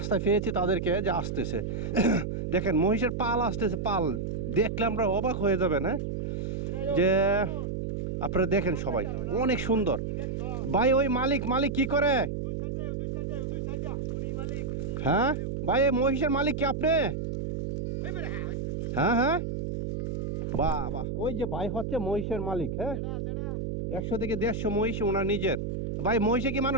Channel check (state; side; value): noise; right; hum, 3 dB below the sound